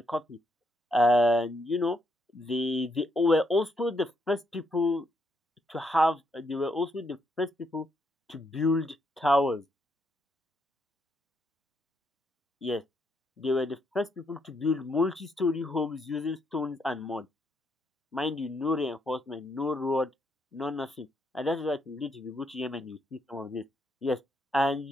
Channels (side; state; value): both; normal; correlation 0.76